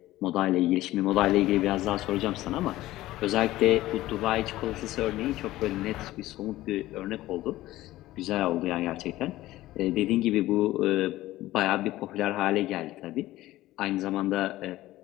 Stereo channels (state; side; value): quieter; right; 16.2 dB